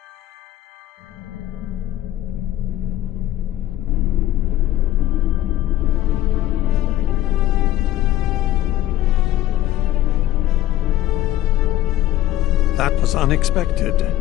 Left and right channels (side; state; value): right; quieter; 13.8 dB